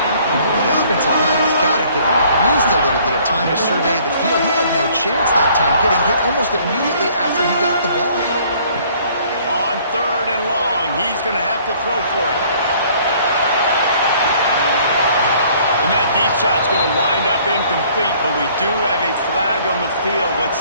The offensive line has got to give him at least a little bit of time to survey the field. He had no chance that time, getting hit almost immediately after he got the ball. On 3rd and long, he's going to have to throw for it. And that deep shot's going to wind up incomplete, but we do have a flag on the field. Let's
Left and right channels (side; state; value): both; inverted; correlation -0.58